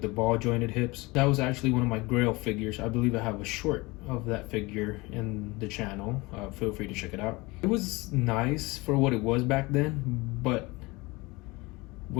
ball jointed hips. That was actually one of my grail figures. I believe I have a short of that figure in the channel. Feel free to check it out. It was nice for what it was back then, but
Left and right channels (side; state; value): right; quieter; 23.6 dB